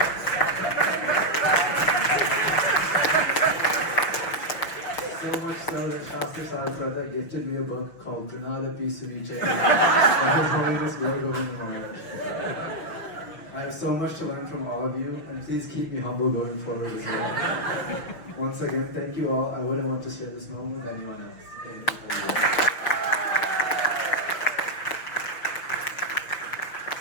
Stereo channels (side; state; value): right; late; 5.9 ms